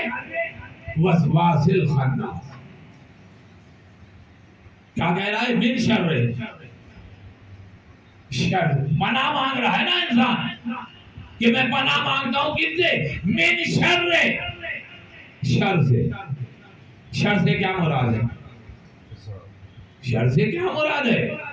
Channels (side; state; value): both; identical; correlation 1.00